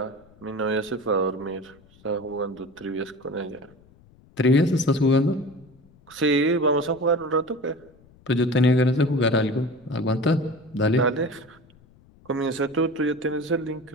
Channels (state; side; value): noise; left; rumble, 28 dB below the sound